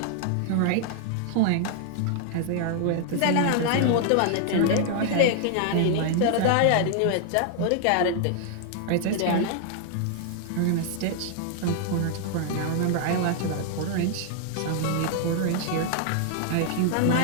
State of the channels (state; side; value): different; both; correlation 0.00